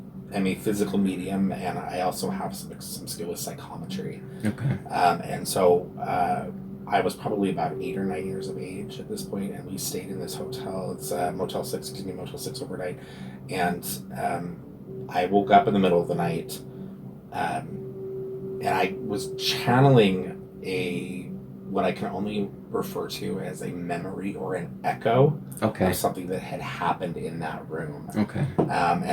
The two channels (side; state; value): both; identical; correlation 1.00